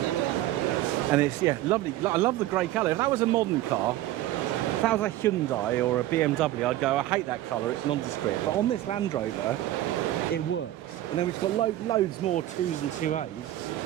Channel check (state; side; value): quieter; left; 14.7 dB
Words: are crying. And it's, yeah, lovely. I love the grey colour. If that was a modern car, if that was a Hyundai or a BMW, I'd go, I hate that colour, it's nondescript. But on this Land Rover, it works. And then we've got loads more 2s and 2As